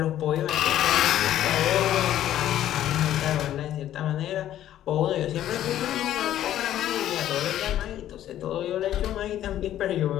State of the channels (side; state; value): right; quieter; 12.2 dB